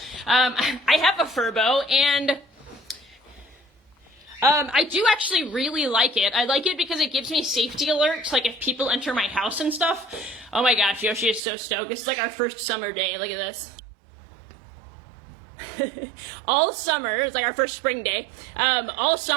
I have a Furbo, and I do actually really like it. I like it because it gives me safety alerts, like if people enter my house and stuff. Oh my gosh, Yoshi is so stoked. This is like our first summer day. Look at this. All summer, it's like our first spring day. All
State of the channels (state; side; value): drops out; left; at 11.4 s